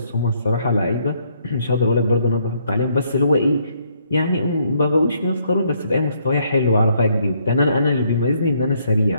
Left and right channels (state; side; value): inverted; both; correlation -0.70